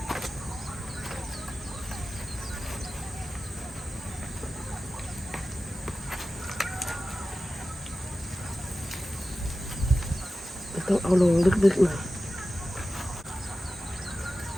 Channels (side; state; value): both; normal; correlation 0.94